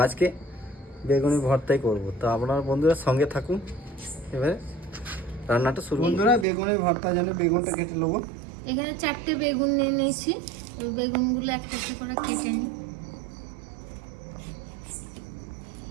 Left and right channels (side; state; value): left; drops out; at 6.5 s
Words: আজকে বেগুনি ভর্তাই করব। তো আপনারা বন্ধুরা সঙ্গে থাকুন, এবারে রান্নাটা শুরু। বন্ধুরা বেগুনি ভর্তার জন্য বেগুনটা কেটে নেবো। এখানে 4টে বেগুন নিয়ে নিয়েছি, ওই বেগুনগুলো একটা একটা করে কেটে নিই।